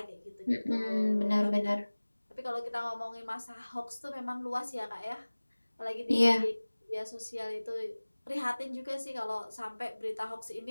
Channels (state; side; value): inverted; both; correlation -1.00